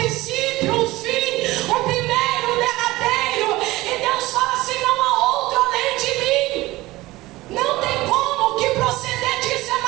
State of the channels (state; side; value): quieter; left; 18.9 dB